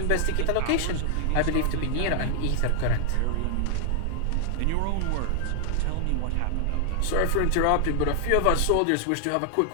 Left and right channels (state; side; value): different; both; correlation 0.00